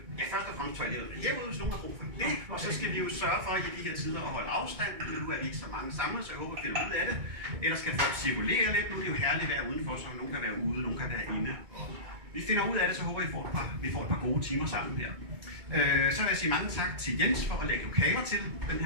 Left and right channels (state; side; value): late; left; 2.2 ms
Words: Først og fremmest toilettet herude, hvis nogen har brug for det, og så skal vi jo sørge for i de her tider at holde afstand. Nu er vi ikke så mange samlet, så jeg håber, at vi finder ud af det. Ellers skal folk cirkulere lidt. Nu er det jo herligt at være udenfor, så nogen kan være ude, nogen kan være inde. Vi finder ud af det, så håber vi får et par gode timer sammen her. Så vil jeg sige mange tak til Jens for at lægge lokaler til den